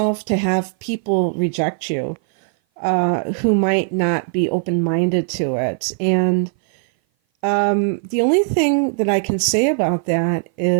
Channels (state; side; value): silent; left; 57 dB below the other